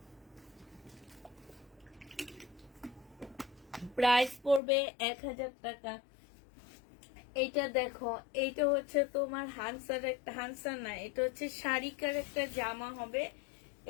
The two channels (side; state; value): right; drops out; at 4.6 s